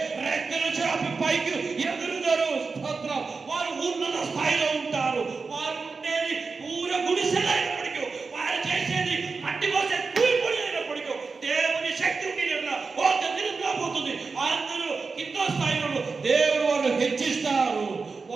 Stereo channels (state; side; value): quieter; left; 4.5 dB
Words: రెక్కలు చాపి పైకి ఎగురుతారు. స్తోత్రం. వారు ఉన్నత స్థాయిలో ఉంటారు. వారు ఉండేది పూర గుడిసెలైనప్పటికీ, వారు చేసేది మట్టి పోసే కూలిపొడి అయినప్పటికీ దేవుని శక్తి ఒక దినం రాబోతుంది. అందరూ కింద స్థాయిలో దేవుడు వారు హెచ్చిస్తారు,